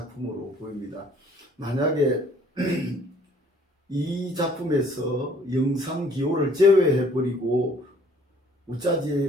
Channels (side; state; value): both; normal; correlation 0.59